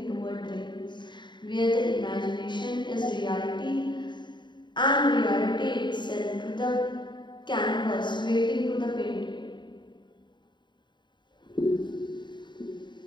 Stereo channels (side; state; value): right; late; 0.22 ms